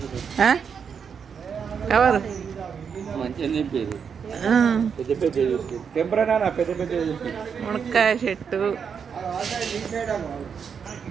కవరు. మునక్కాయ చెట్టు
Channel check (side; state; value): left; quieter; 6.7 dB